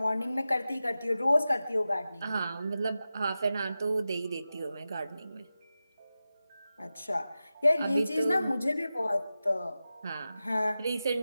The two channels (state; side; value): inverted; both; correlation -0.93